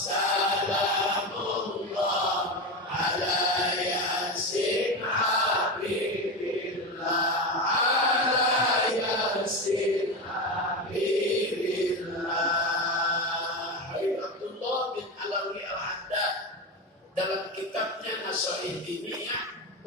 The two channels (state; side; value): normal; both; correlation 0.19